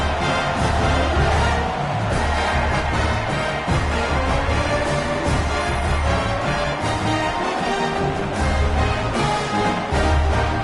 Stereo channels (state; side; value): identical; both; correlation 1.00